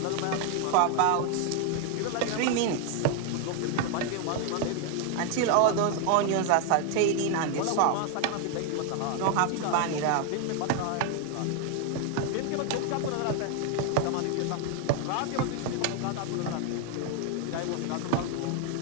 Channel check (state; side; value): different; both; correlation 0.01